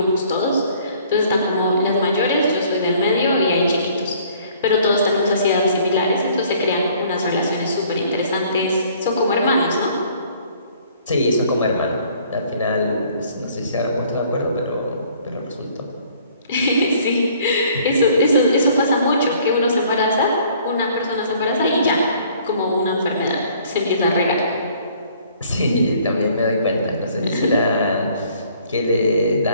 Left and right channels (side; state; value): both; inverted; correlation -0.58